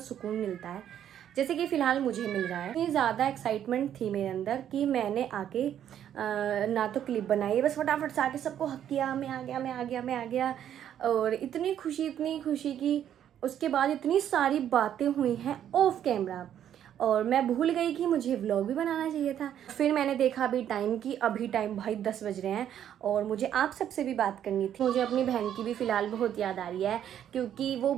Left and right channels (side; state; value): left; quieter; 10.2 dB